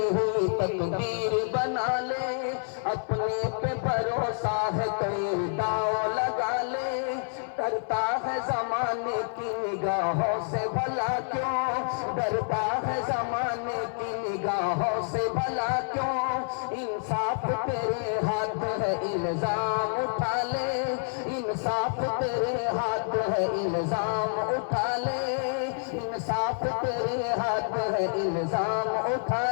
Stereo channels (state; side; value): silent; right; 56 dB below the other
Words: ہوئی تقدیر بنا لے, اپنے پہ بھروسہ ہے کوئی داؤ لگا لے, ڈرتا ہے زمانے کی نگاہوں سے بھلا کیوں, ڈرتا ہے زمانے کی نگاہوں سے بھلا کیوں, انصاف تیرے ہاتھ ہے الزام اٹھا لے, انصاف تیرے ہاتھ ہے الزام اٹھا لے, انصاف تیرے ہاتھ ہے الزام